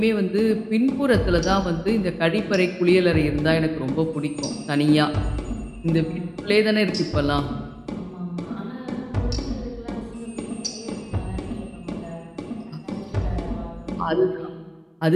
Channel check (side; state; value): both; identical; correlation 1.00